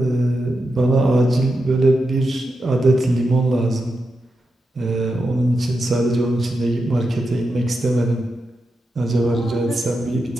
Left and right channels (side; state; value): both; normal; correlation 0.88